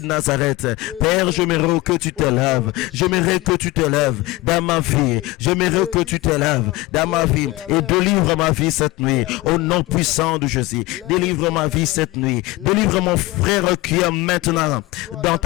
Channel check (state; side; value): quieter; right; 20.2 dB